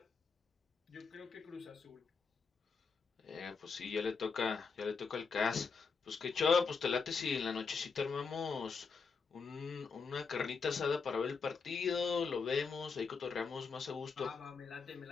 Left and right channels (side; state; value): right; quieter; 5.2 dB